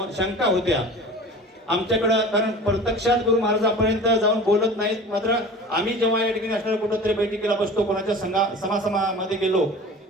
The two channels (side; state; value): both; normal; correlation 0.39